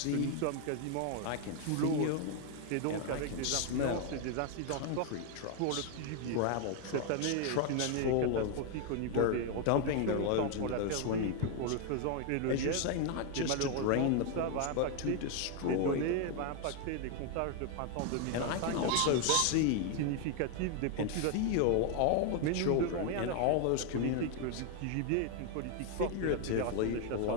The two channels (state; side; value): different; both; correlation 0.01